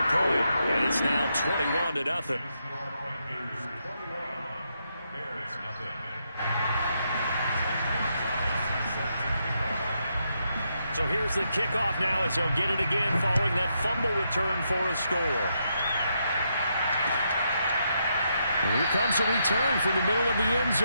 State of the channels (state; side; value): inverted; both; correlation -0.80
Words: point, and it's now 21-0. So here's the kickoff now as he'll get it again following that fumble return for a score. And here comes a return from the middle of the end